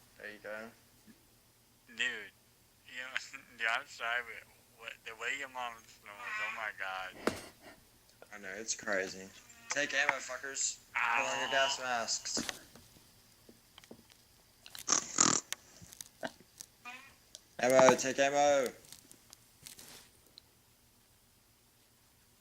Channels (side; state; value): both; identical; correlation 1.00